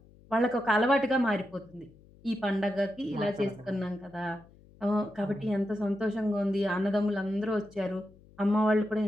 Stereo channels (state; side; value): noise; left; hum, 25 dB below the sound